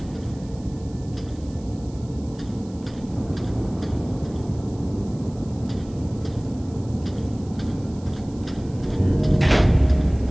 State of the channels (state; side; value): noise; right; hiss, 25 dB below the sound